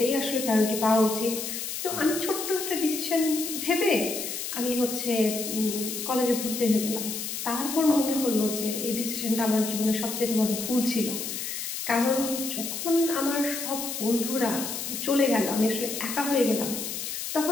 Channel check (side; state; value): left; noise; hiss, 5 dB below the sound